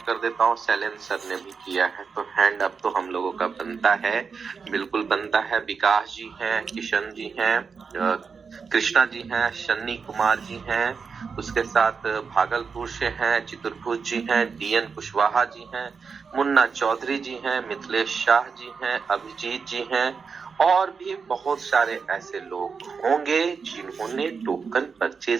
कर देता हूँ। सैलेन सर ने भी किया है, तो हैंड अप तो हम लोगों का बनता है, बिल्कुल बनता है। विकास जी हैं, किशन जी हैं, कृष्णा जी हैं, शन्नी कुमार जी हैं, उसके साथ भागलपुर से हैं, चित्रभुज जी हैं, DN कुशवाहा जी हैं, मुन्ना चौधरी जी हैं, मिथिलेश शाह जी हैं, अभिजीत जी हैं, और भी बहुत सारे ऐसे लोग होंगे जिन्होंने टोकन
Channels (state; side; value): quieter; left; 5.5 dB